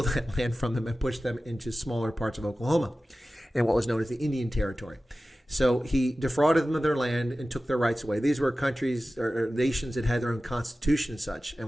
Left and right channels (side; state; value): both; normal; correlation 0.95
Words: that land from them and push them into smaller parts of Oklahoma and what was known as the Indian Territory. So he defrauded them of their land and took their rights away. These were countries or nations that had their own constitution and such and